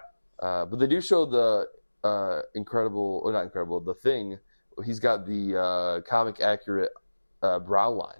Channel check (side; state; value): both; inverted; correlation -1.00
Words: But they do show the the Thing. He's got the comic accurate brow